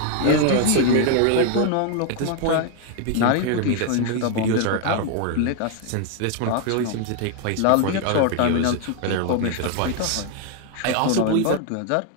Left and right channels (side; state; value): both; different; correlation 0.01